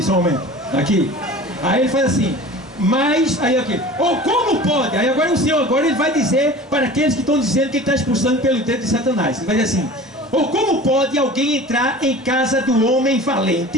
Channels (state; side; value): normal; both; correlation 0.39